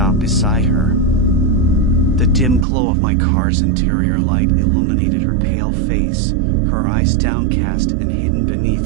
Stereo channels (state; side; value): drops out; left; at 2.7 s